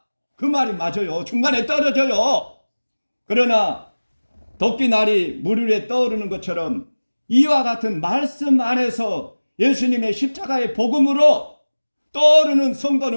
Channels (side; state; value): both; inverted; correlation -1.00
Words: 그 말이 맞아요. 중간에 떨어져요. 그러나 덕기날이 물 위에 떠오르는 것처럼 이와 같은 말씀 안에서 예수님의 십자가의 복음으로 떠오르는